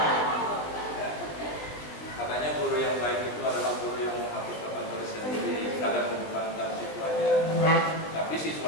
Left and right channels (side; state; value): right; late; 19 ms